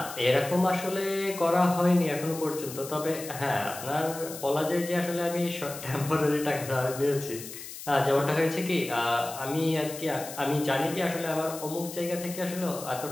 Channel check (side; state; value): left; noise; hiss, 12 dB below the sound